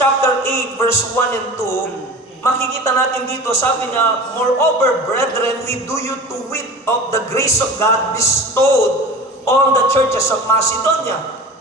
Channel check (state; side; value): normal; both; correlation 0.37